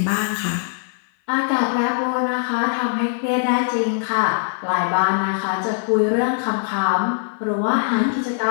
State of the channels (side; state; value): right; silent; 57 dB below the other